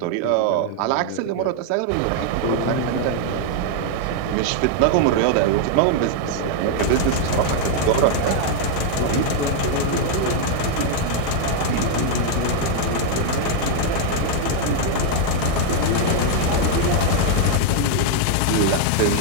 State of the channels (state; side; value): different; both; correlation 0.00